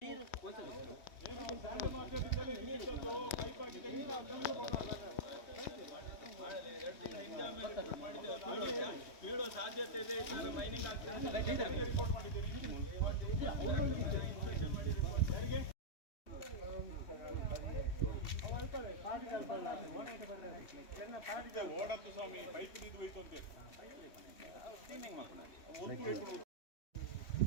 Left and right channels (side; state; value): right; late; 3.1 ms